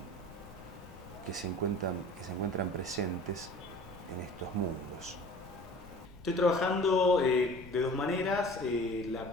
que se encuentran presentes en estos mundos. Estoy trabajando de dos maneras. La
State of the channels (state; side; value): noise; left; rumble, 19 dB below the sound